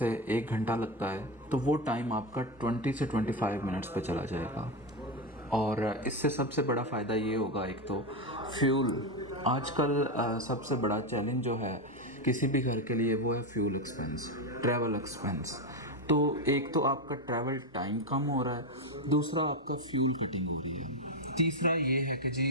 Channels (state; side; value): normal; both; correlation 0.11